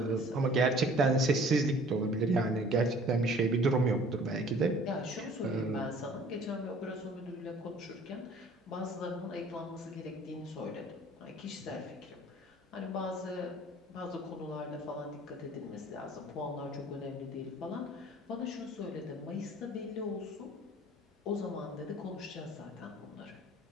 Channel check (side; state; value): both; normal; correlation 0.51